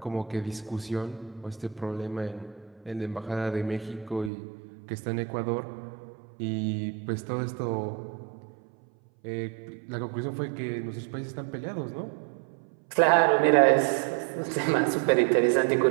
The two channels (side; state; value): left; drops out; at 4.3 s